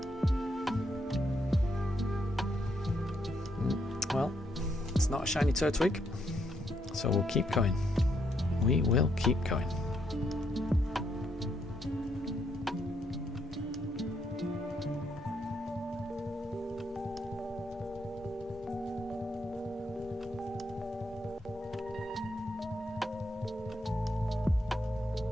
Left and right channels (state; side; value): normal; both; correlation 0.75